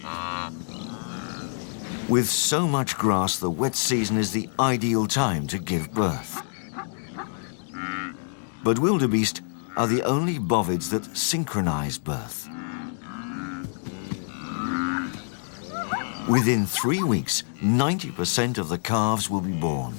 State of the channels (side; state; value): right; silent; digital silence